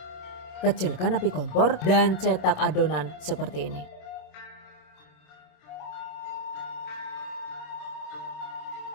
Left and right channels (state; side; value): late; right; 27 ms